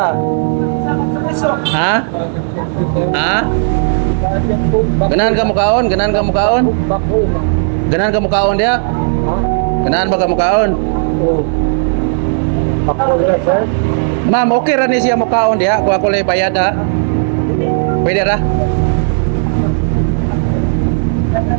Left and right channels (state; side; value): silent; left; digital silence